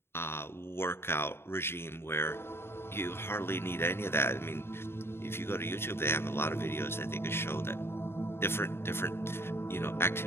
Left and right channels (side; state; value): right; late; 0.11 ms